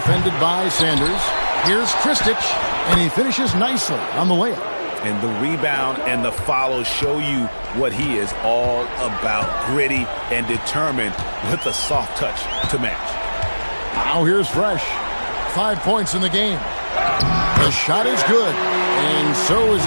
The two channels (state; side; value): inverted; both; correlation -1.00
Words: by Sanders. Here's Kristich. And he finishes nicely on the layup. And the rebound and the follow show you what he is all about. Gritty and determined with a soft touch to match. Now here's Fresh. 5 points in the game. The shot is good. And so is